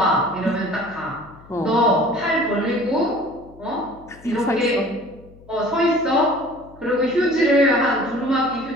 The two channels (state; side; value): noise; left; hum, 23 dB below the sound